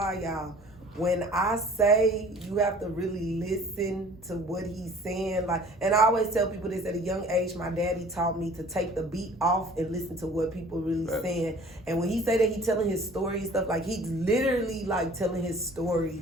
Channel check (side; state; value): both; normal; correlation 0.49